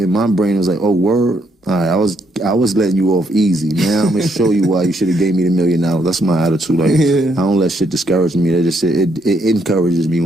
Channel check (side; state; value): both; normal; correlation 0.73